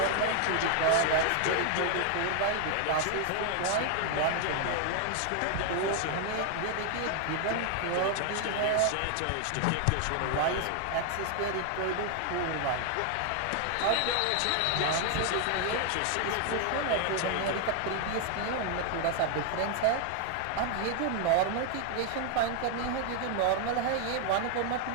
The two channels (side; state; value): both; different; correlation 0.00